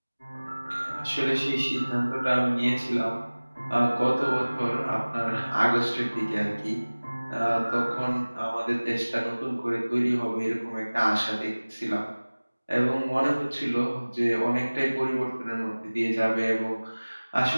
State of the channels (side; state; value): both; inverted; correlation -1.00